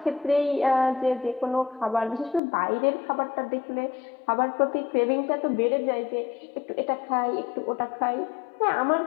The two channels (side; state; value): right; drops out; at 2.4 s